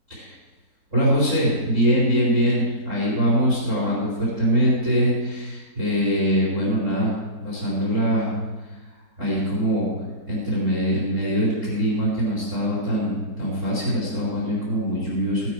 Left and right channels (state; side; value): late; left; 3.7 ms